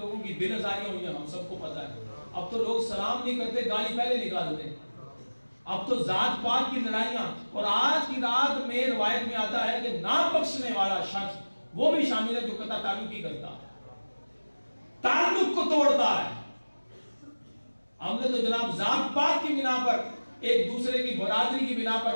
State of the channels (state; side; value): inverted; both; correlation -1.00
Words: کی بے نظاریاں ہوئی ہیں ہم سب کو پتا ہے. اب تو لوگ سلام نہیں کرتے، گالی پہلے نکالتے ہیں. اب تو ذات پات کی لڑائیاں، اور آج کی رات میں روایت میں آتا ہے کہ نہ بخشنے والا شخص وہ بھی شامل ہے جو قطع تعلقی کرتا ہے، تعلق کو توڑتا ہے. ہم نے تو جناب ذات پات کی بنا پر، ایک دوسرے کی برادری کی بنا